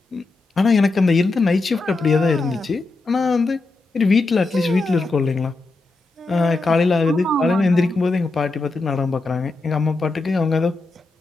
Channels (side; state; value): right; quieter; 3.4 dB